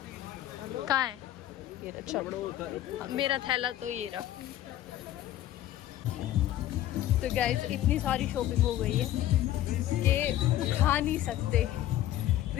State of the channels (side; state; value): right; quieter; 13.3 dB